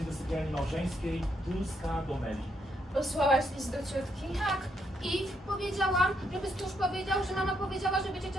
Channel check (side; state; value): both; normal; correlation 0.76